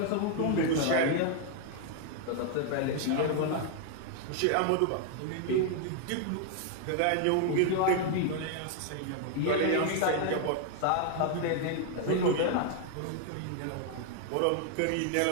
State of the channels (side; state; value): both; different; correlation 0.00